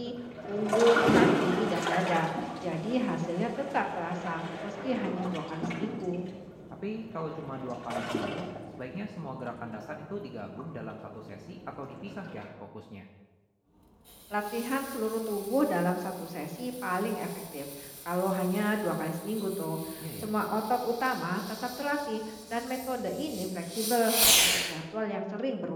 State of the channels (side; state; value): both; identical; correlation 1.00